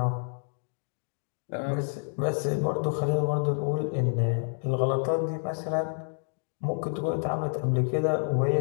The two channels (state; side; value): silent; right; digital silence